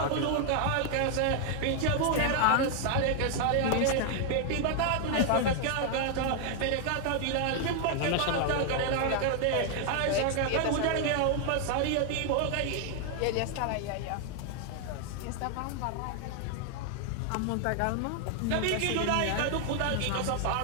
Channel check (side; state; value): both; different; correlation 0.00